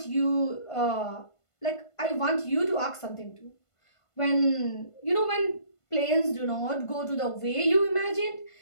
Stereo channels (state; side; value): late; right; 1.5 ms